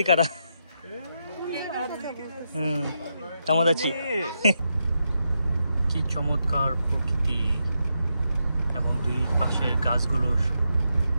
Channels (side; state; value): both; inverted; correlation -0.84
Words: কারা। কেমন আছি? কি চমৎকার প্রকৃতি এবং দুই পাশের গাছগুলো